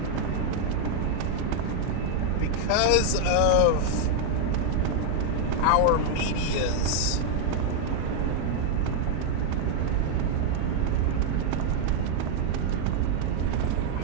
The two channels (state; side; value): different; both; correlation 0.00